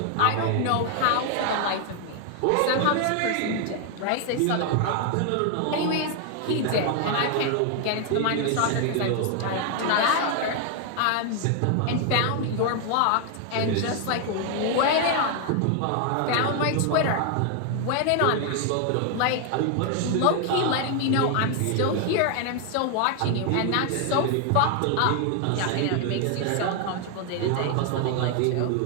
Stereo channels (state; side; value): different; both; correlation 0.00